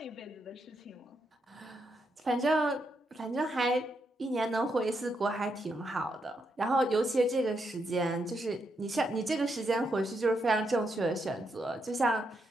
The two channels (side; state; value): both; normal; correlation 0.81